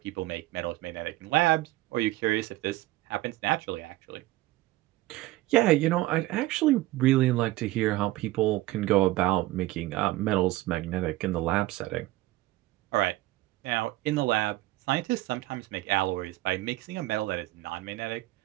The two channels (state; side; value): quieter; left; 17.6 dB